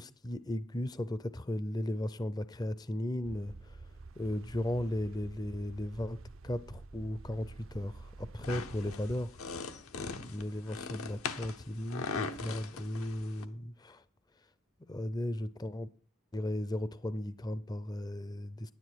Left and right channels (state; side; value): normal; both; correlation 0.84